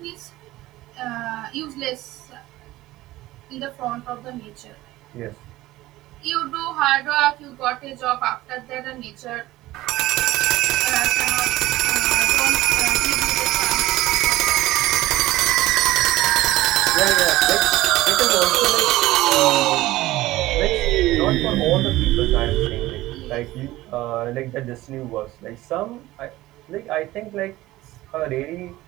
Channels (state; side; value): quieter; left; 17.2 dB